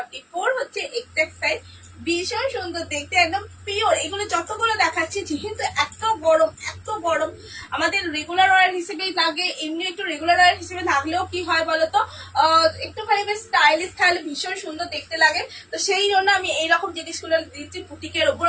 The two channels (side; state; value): both; identical; correlation 1.00